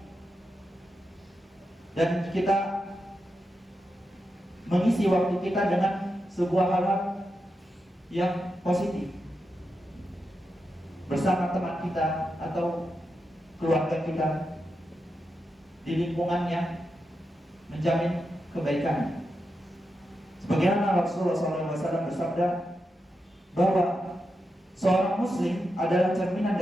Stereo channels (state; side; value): normal; both; correlation 0.88